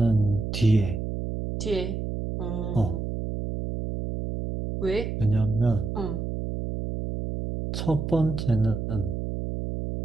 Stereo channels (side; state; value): right; noise; hum, 4 dB below the sound